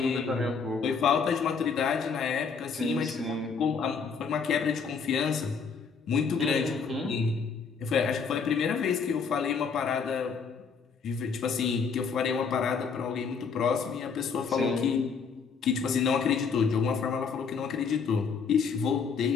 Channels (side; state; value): right; quieter; 5.6 dB